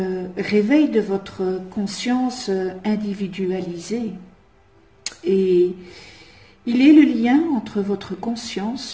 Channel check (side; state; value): both; identical; correlation 1.00